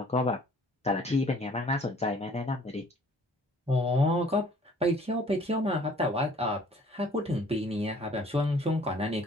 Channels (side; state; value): both; normal; correlation 0.55